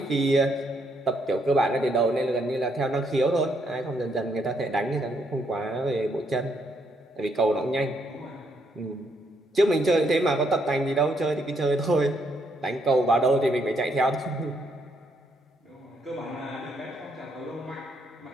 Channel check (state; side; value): normal; both; correlation 0.74